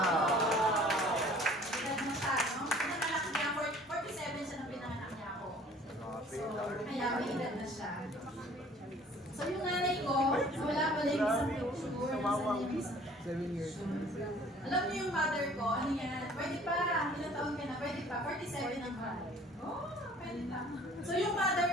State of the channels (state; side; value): normal; both; correlation 0.52